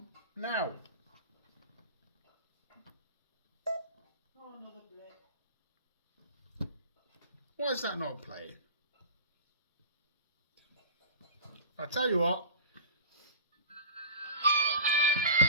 now. Oh, another blip. Why is that not playing? I'll tell you what.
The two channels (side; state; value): both; inverted; correlation -0.35